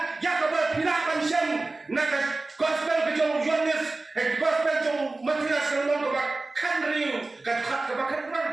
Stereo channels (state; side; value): quieter; left; 3.2 dB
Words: ya ke berpirakan syam nak gospel ke jong Yohanes gospel jong Matias selong ke bakkan riu ke bakkan